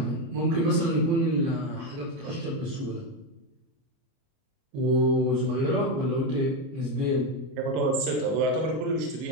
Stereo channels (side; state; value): left; late; 30 ms